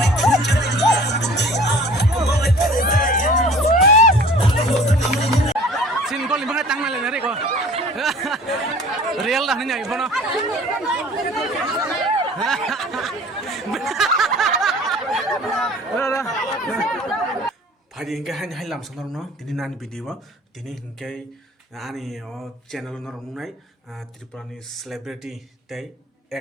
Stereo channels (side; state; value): both; normal; correlation 0.47